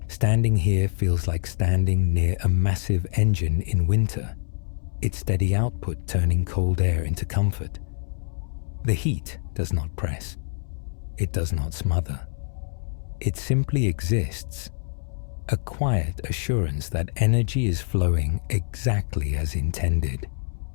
Standing here feels like standing near a massive engine in winter, its steady output turning cold air into comfort. The heat does not press. It does not smother. It simply exists, a quiet assurance that energy is flowing exactly as intended.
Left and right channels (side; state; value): right; silent; 61 dB below the other